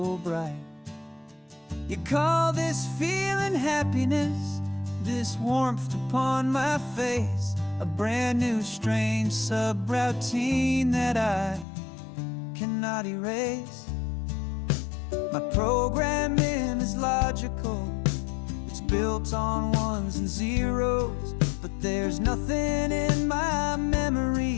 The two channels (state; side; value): drops out; right; at 11.7 s